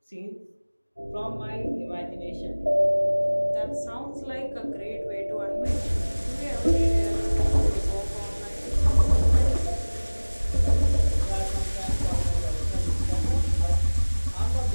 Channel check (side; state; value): both; inverted; correlation -1.00